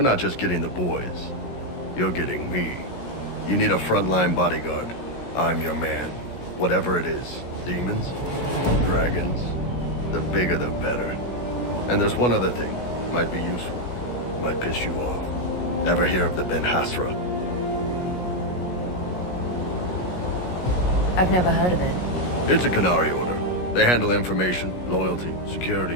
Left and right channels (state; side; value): late; right; 17 ms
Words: not just getting the boys. You're getting me. You need a frontline bodyguard. I'm your man. Whatever it is. Demons? Dragons? The bigger the better. And there's one other thing. Might be useful. Might piss you off. Ever hear of the Ben Hasra? I've never heard of it. It's a Qunari order. They handle information, loyalty,